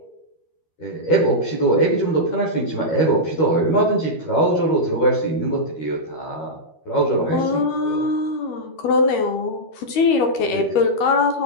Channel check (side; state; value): right; late; 13 ms